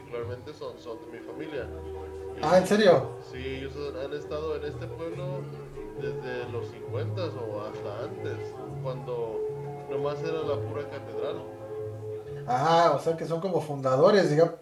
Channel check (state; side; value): identical; both; correlation 1.00